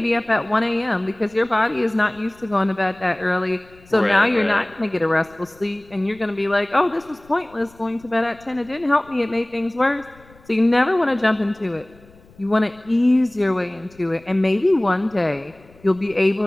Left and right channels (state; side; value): noise; left; rumble, 27 dB below the sound